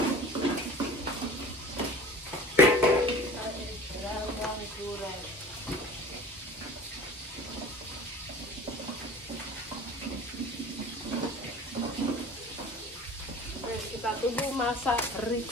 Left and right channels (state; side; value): normal; both; correlation 0.42